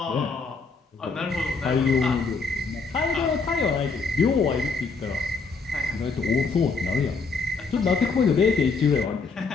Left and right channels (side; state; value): right; quieter; 4.4 dB